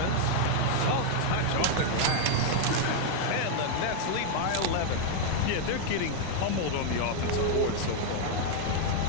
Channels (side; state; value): both; different; correlation 0.00